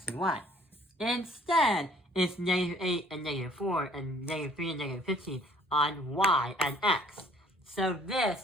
and y. Instead, it's negative 8 and negative 4 and negative 3 and negative 15 on y and x. So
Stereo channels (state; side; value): normal; both; correlation 0.58